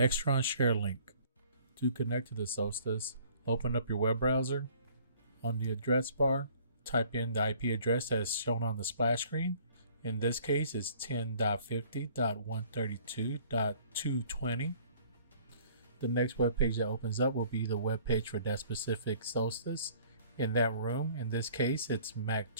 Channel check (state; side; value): inverted; both; correlation -0.55